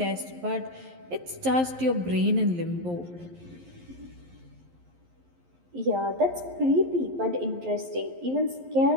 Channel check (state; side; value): late; left; 11 ms